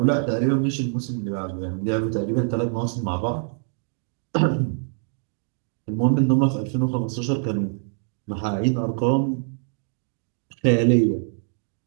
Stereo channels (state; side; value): silent; left; 56 dB below the other